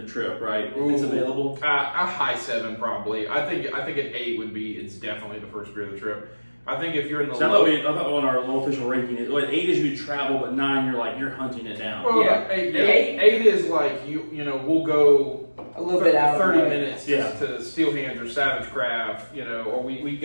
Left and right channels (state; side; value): inverted; both; correlation -1.00